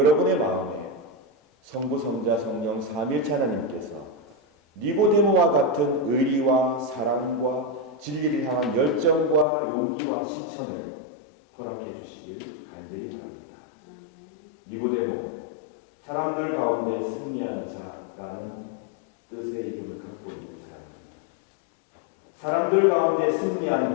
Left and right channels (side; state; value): right; drops out; at 9.5 s